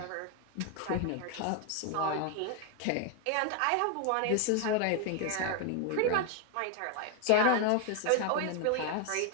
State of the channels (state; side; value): different; both; correlation 0.01